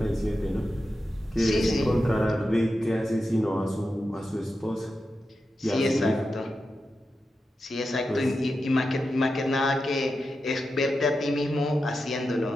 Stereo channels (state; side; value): normal; both; correlation 0.90